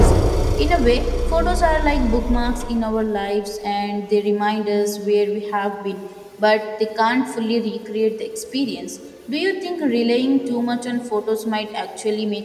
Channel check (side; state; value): both; identical; correlation 1.00